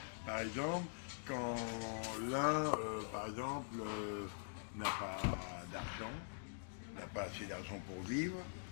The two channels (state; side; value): silent; right; digital silence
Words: par exemple, quand l'un, par exemple, n'a pas d'argent, n'a pas assez d'argent pour vivre,